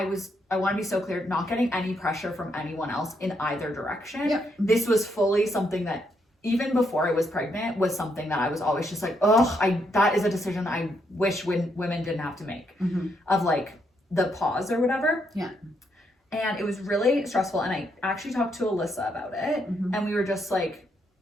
want to be so clear, not getting any pressure from anyone else in either direction. Yep. This was fully something that, even before I was pregnant, was something that I was always just like, that is a decision I wish women didn't have to make, of like the pause or whatever. Yeah. And it was really stressful. And I actually talked to Alyssa about it. And we were just like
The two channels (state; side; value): normal; both; correlation 0.77